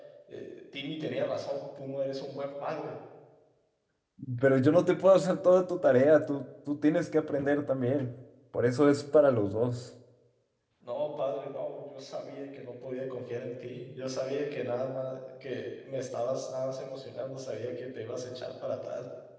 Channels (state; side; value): identical; both; correlation 1.00